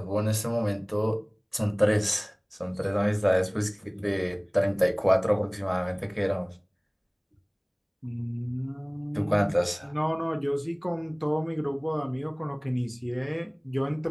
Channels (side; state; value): both; identical; correlation 1.00